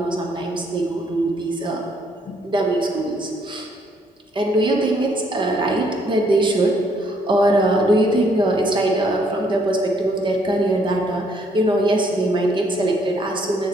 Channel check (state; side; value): normal; both; correlation 0.68